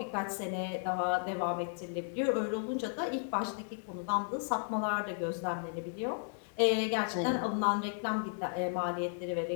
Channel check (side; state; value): right; silent; digital silence